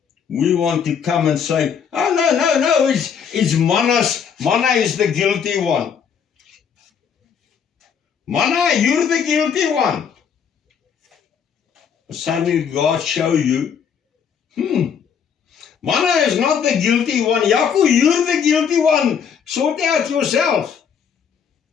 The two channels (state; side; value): quieter; right; 7.2 dB